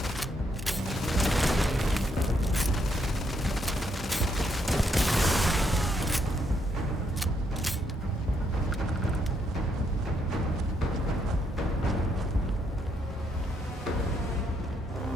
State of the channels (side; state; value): both; normal; correlation 0.75